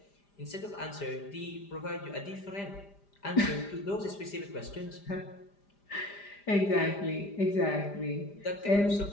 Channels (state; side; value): late; right; 5.0 ms